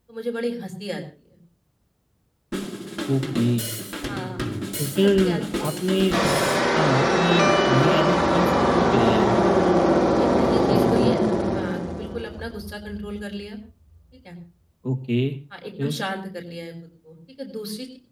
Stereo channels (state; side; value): identical; both; correlation 1.00